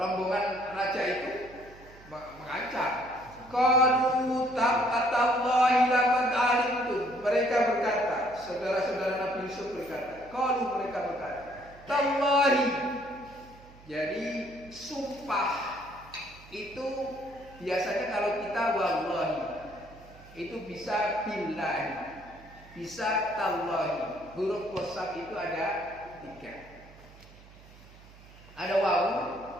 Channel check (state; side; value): noise; right; hum, 22 dB below the sound